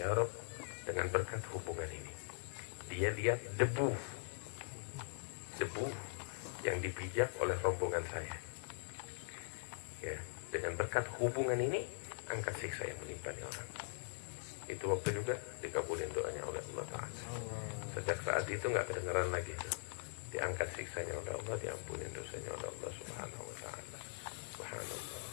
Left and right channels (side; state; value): right; silent; digital silence